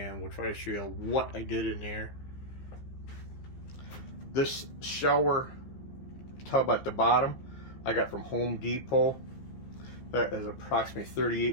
we'll try to show you what I did in there. This shower tub at the bottom I got from Home Depot. That is approximately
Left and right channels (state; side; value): late; right; 15 ms